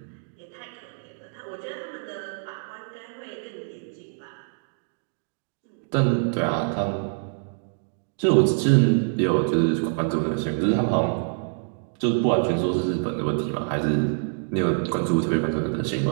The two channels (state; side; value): silent; left; 61 dB below the other